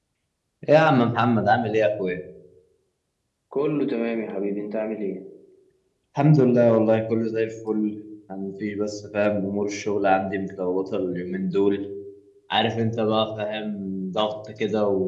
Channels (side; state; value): both; identical; correlation 1.00